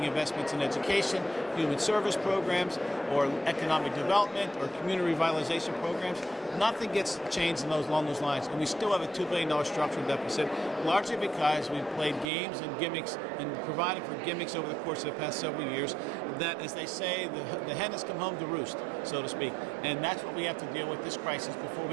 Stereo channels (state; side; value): drops out; left; at 12.3 s